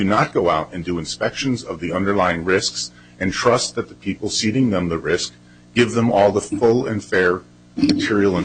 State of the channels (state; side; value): identical; both; correlation 1.00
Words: not go out and do inspections of the underlying risks and trust that the people ceding them the risk give them all the full and fair material